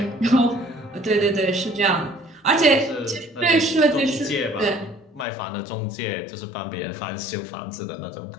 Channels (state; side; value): drops out; right; at 5.2 s